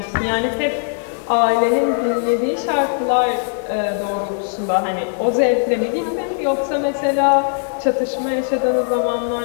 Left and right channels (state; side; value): silent; right; digital silence